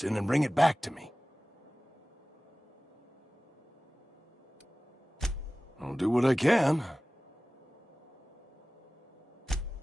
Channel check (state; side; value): normal; both; correlation 0.97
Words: and bring it back to me. I'll do what I can.